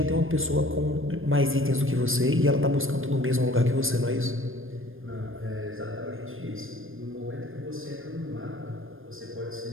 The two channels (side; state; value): left; late; 0.59 ms